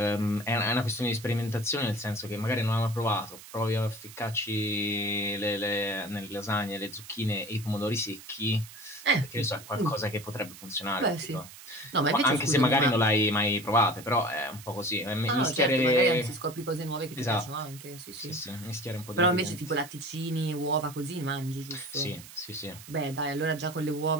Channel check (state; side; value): noise; right; hiss, 17 dB below the sound